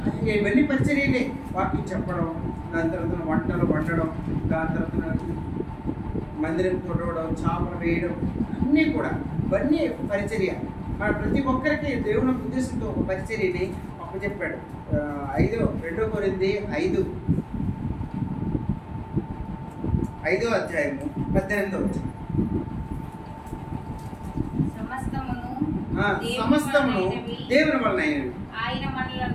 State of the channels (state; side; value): identical; both; correlation 1.00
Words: ఇవన్నీ పరిచర్యలే. వాక్యం చెప్పడం, దాని తర్వాత వంటలు వండడం, దాని తర్వాత మందిరం కొట్టడం, చాపలు వేయడం, అన్నీ కూడా ఇవన్నీ పరిచర్య. మన ప్రతి ఒక్కరికి దేవుని ఉద్దేశంతో ఒక పరిచర్యని అప్పచెప్పాడు. 2 కొరింథీ 5వ అధ్యాయము 18వ వచనం. సమస్తమును దేవుని వలనైనవి,